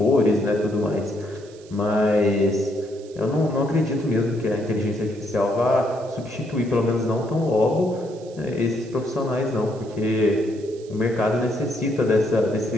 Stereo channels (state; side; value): noise; right; hiss, 25 dB below the sound